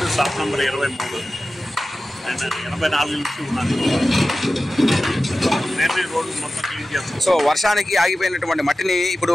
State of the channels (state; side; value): normal; both; correlation 0.94